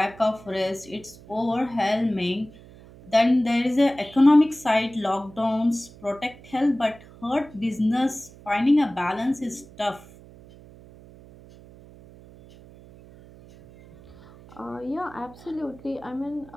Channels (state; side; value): noise; right; hum, 21 dB below the sound